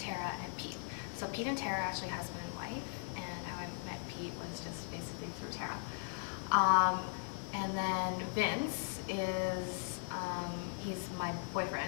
and Pete. So Pete and Tara are actually husband and wife, and how I met Pete was just basically through Tara. And then Vince is, he's my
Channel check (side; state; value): right; silent; digital silence